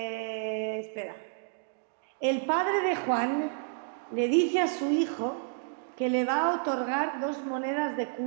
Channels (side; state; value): left; silent; digital silence